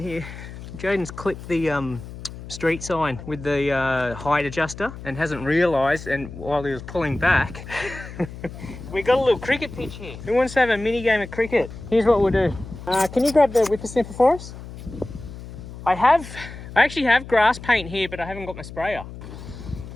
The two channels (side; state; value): left; noise; hum, 13 dB below the sound